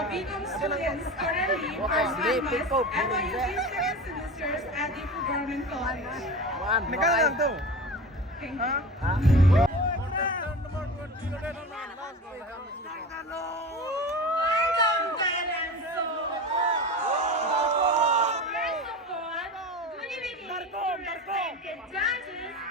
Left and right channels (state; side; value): normal; both; correlation 0.30